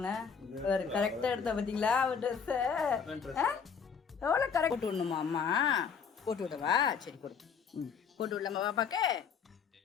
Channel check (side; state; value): right; quieter; 6.5 dB